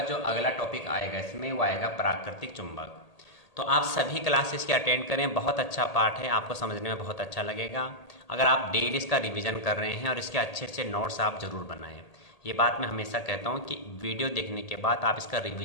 जो अगला टॉपिक आएगा इसमें वो आएगा प्राकृतिक चुंबक। तो आप सभी क्लासेस के अटेंड करें, बहुत अच्छा पार्ट है, आपको समझने में बहुत अच्छा लगेगा। अगर आप डेली इसका रिवीजन कर रहे हैं और इसके अच्छे अच्छे नोट्स आप ज़रूर बनाएं। ये बात मैं हमेशा कहता हूँ कि वीडियो देखने के बाद आप इसका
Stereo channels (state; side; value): late; right; 1.8 ms